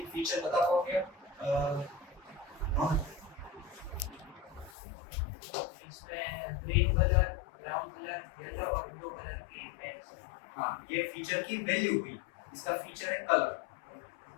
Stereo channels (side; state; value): right; drops out; at 4.7 s